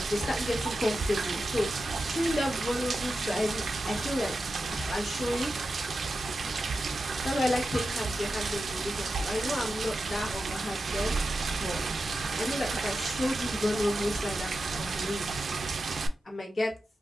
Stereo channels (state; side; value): normal; both; correlation 0.91